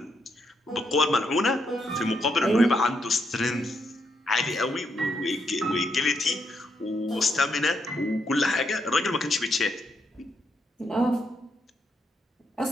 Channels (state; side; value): normal; both; correlation 0.78